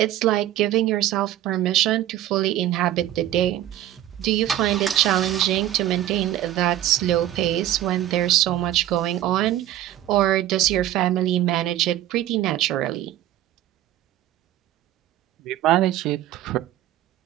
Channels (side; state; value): left; quieter; 13.1 dB